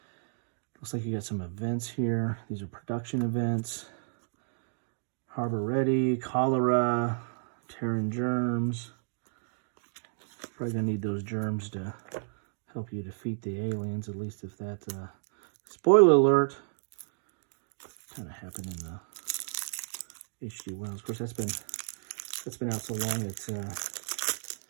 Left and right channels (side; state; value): left; silent; digital silence